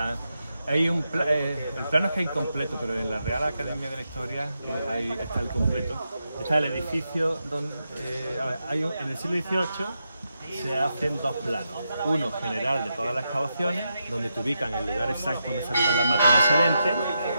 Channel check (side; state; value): both; inverted; correlation -0.85